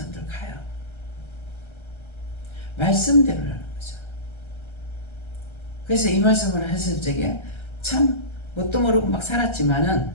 가요. 말씀대로라는 거죠. 그래서 이 말씀을 했을 적에 참 뭣도 모르고 막 살았지만은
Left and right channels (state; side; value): late; right; 1.3 ms